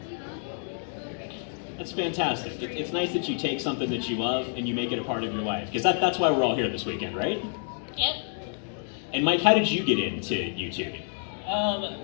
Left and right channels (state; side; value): silent; right; 59 dB below the other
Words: That's fantastic. It's nice that you take something that you love and you make it a part of your life. Because that's why we're all here this weekend, right? Yep. And Mike, how did you get into YouTube?